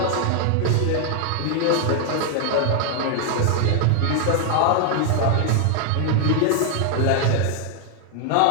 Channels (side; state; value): both; different; correlation 0.00